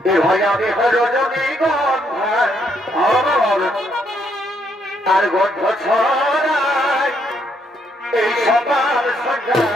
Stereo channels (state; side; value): normal; both; correlation 0.73